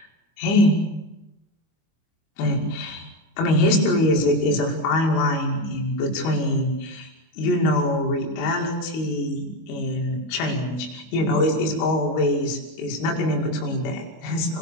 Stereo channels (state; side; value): late; right; 25 ms